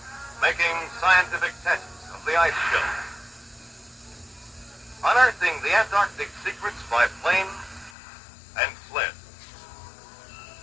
making scientific tests of the ice shelf, unearthing the Antarctic secrets by plane and sled,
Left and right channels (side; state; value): right; drops out; at 7.9 s